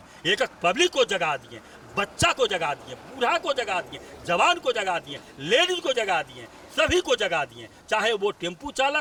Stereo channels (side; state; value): both; identical; correlation 1.00